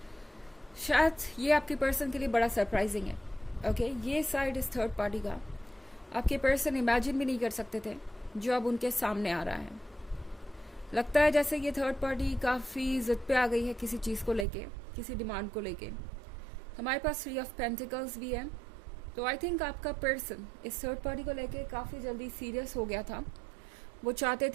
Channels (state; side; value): drops out; left; at 14.5 s